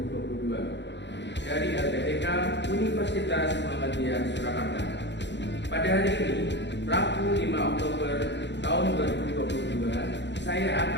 dari LPTK Universitas Muhammadiyah Surakarta. Pada hari ini, Rabu 5 Oktober tahun 2022, saya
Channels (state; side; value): late; right; 0.52 ms